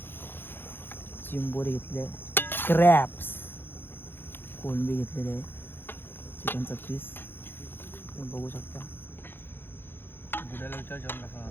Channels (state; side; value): late; right; 0.10 ms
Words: चिंबोरी घेतले, क्रॅप्स, कोलंबी घेतलेले आहे, चिकनचा पीस तुम्ही बघू शकता.